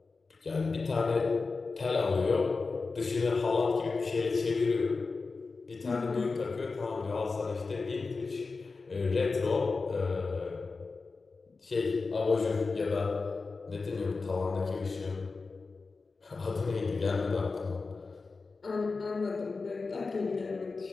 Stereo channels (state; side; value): quieter; right; 4.1 dB